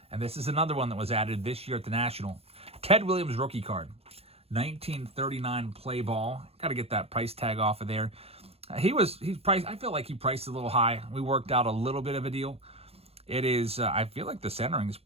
And this is another one that was added this year at the National. Ted Williams rookie card. 1939 play ball. Got to get that price tag off of there. He's priced. I feel like he priced a little high. We worked out a little bit of a deal. It is, I feel like the centering is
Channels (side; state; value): left; late; 0.29 ms